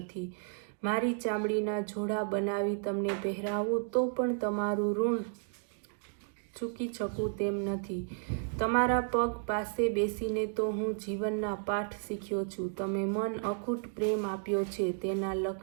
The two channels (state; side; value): silent; left; 56 dB below the other